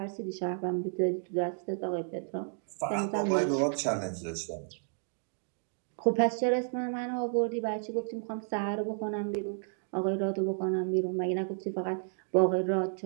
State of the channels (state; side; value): silent; left; digital silence